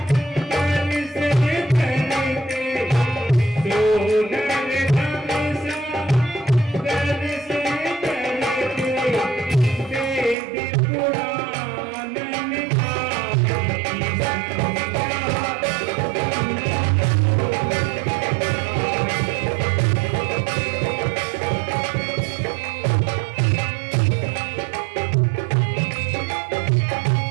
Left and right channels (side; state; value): left; drops out; at 10.4 s